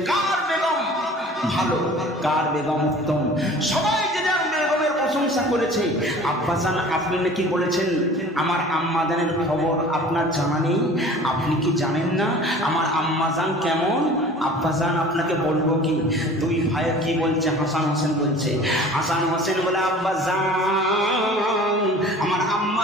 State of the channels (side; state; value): both; normal; correlation 0.45